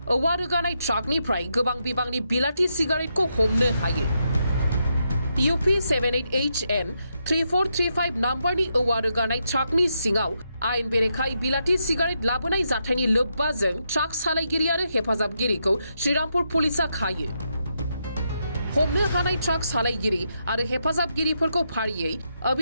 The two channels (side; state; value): both; inverted; correlation -0.82